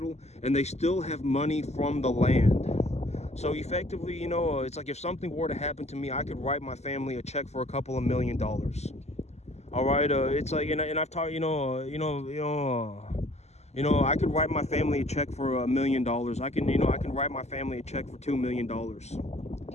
and they still have money from the land. So effectively, it's like if something were to happen to me, I could write my family a check for a couple of $1 million. All right, it's like, and I've talked, I could write my family a check for $1 million. I can write my family a check for $2 million.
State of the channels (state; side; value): late; right; 0.32 ms